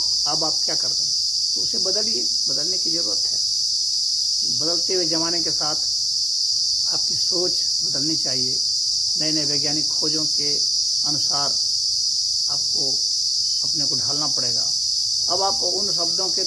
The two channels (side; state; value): both; normal; correlation 0.95